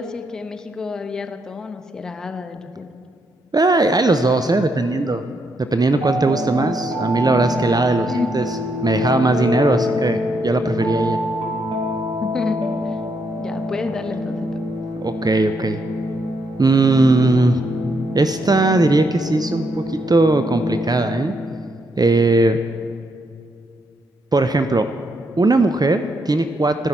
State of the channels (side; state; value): both; normal; correlation 0.77